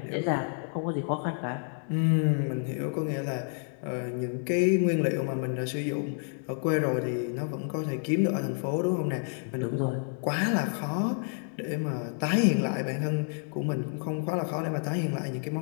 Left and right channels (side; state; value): right; silent; 58 dB below the other